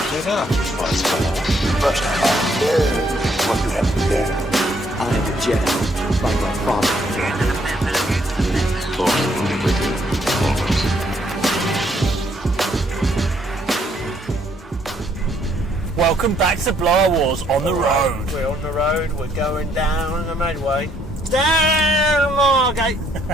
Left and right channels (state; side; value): normal; both; correlation 0.69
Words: it up, Buzzsaw. But what you have there. I am a Jedi, like my father. Welcome back to Blower Wars on the road. We're on the road, we're going down the Medway. Down Margate!